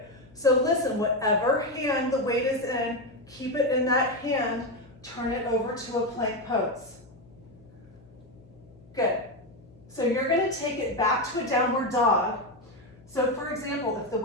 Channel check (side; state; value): left; noise; hum, 24 dB below the sound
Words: So listen, whatever hand the weight is in, keep it in that hand, turn it over to a plank pose. Good. So you're going to take it back to a downward dog. So for example, if the